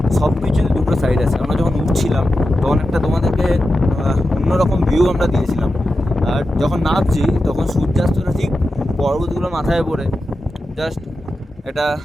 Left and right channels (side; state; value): both; normal; correlation 0.91